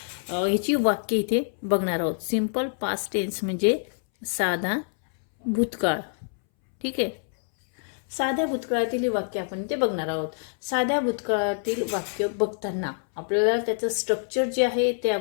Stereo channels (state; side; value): silent; right; 61 dB below the other